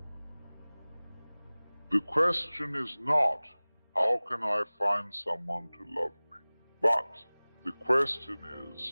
The question is not, how can I find someone to love me? But the question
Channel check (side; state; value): both; inverted; correlation -1.00